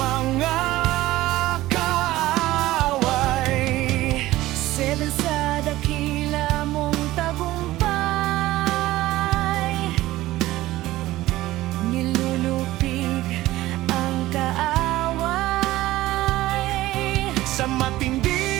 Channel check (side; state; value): left; quieter; 16.6 dB